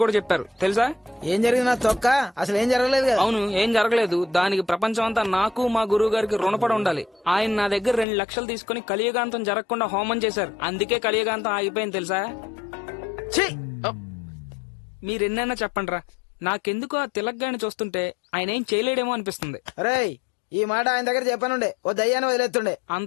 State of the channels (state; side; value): drops out; right; at 8.1 s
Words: కూడా చెప్పారు తెలుసా? ఏం జరిగినా తొక్క, అసలు ఏం జరగలేదు కదా. అవును, ఏం జరగలేదు. దానికి ప్రపంచం అంతా నాకు మా గురువు గారికి రుణపడి ఉండాలి. ఆయన నా దగ్గర 2 లక్షలు తీసుకుని కలియుగాంతం జరగకుండా హోమం చేశారు. అందుకే కలియుగాంతం ఆగిపోయింది తెలుసా? మీరెన్నైనా చెప్పండి రా, నాకెందుకు ఆ తిలక్ గారిని చూస్తుంటే ఆయన ఏం చేయలేడేమో అనిపిస్తుంది. రేయ్, ఈ మాట ఆయన దగ్గర చెప్పనుండే, ఓ దయ్యాన్ని వదిలేస్తుండే.